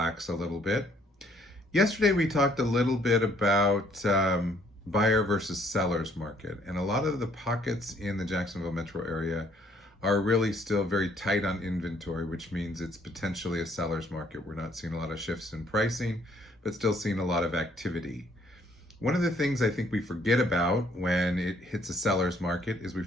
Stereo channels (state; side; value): normal; both; correlation 0.64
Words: a little bit. Yesterday, we talked a little bit about buyer versus seller's market, and a lot of the pockets in the Jacksonville metro area are really still very tight on inventory, which means it's potentially a seller's market. We're not seeing a lot of shifts in pricing, but still seeing a lot of activity. One of the things I think we forget about when it hits a seller's market is we